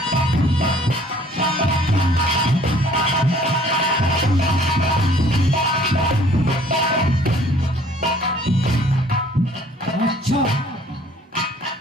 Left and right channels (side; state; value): both; normal; correlation 0.56